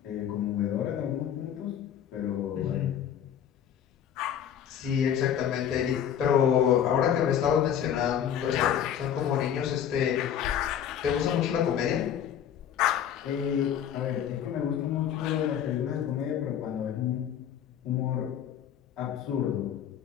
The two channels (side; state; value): right; quieter; 9.4 dB